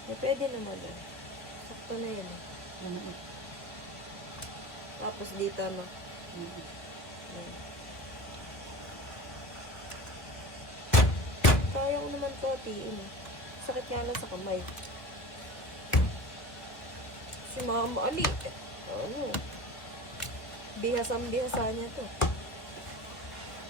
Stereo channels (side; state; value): right; late; 1.5 ms